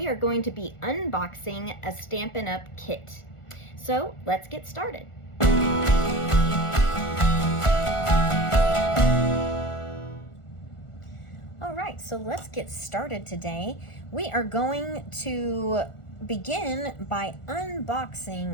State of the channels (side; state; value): right; late; 1.4 ms